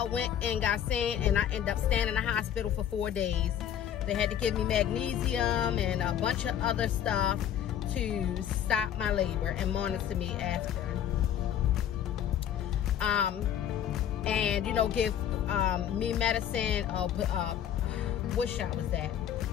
went and got seen, and I ended up staying in the hospital for 4 days. They had to give me magnesium and a bunch of other stuff to stop my labor and monitor me after. And, you know, give me medicine, what shot was that?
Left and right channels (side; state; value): right; quieter; 9.9 dB